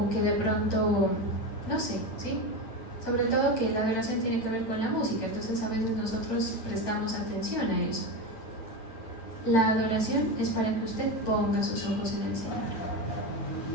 que de pronto, no sé, ¿sí? Sobre todo que la adoración tiene que ver con la música, entonces a veces nosotros prestamos atención a eso. La adoración es para que usted ponga sus ojos en el Señor.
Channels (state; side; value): late; right; 9.0 ms